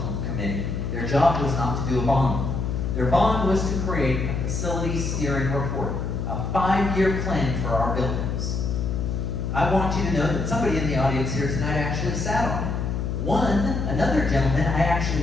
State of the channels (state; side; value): noise; left; hum, 2 dB below the sound